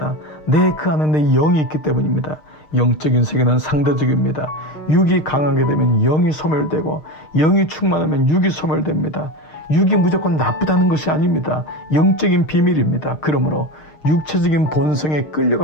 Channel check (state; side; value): late; right; 6.5 ms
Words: 그 안에 내 영이 있기 때문입니다. 영적인 세계는 상대적입니다. 육이 강하게 되면 영이 소멸되고 영이 충만하면 육이 소멸됩니다. 육이 무조건 나쁘다는 것이 아닙니다. 영적인 비밀입니다. 그러므로 육체적인 본성에